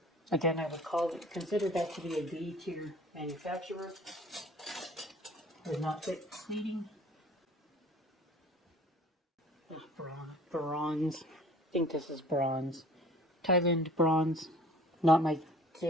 Again, I would consider that to be a B-tier manufacturer. Does not fit plating. Bronze. I think this is bronze. Thailand bronze. Not my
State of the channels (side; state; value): both; normal; correlation 0.48